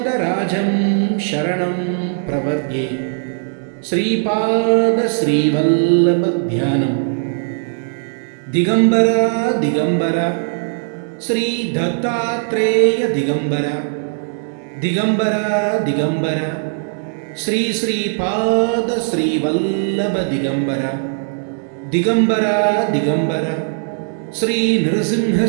शरणं प्रपद्ये। श्रीपाद श्रीवल्लभ ध्यानम्। दिगंबरा दिगंबरा श्री दत्तात्रेय दिगंबरा दिगंबरा दिगंबरा श्री श्रीपाद श्रीवल्लभ दिगंबरा दिगंबरा दिगंबरा श्री नृसिंह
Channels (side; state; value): left; silent; digital silence